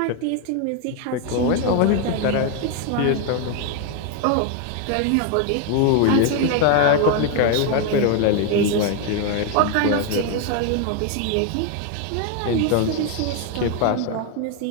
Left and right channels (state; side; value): different; both; correlation 0.01